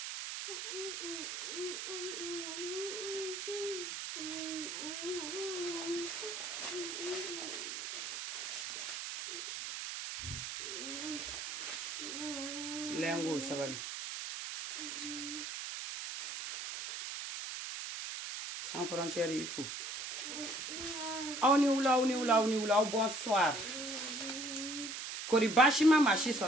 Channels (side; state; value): right; noise; hiss, 5 dB below the sound